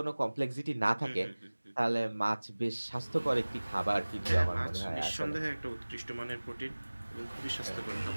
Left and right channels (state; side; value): inverted; both; correlation -1.00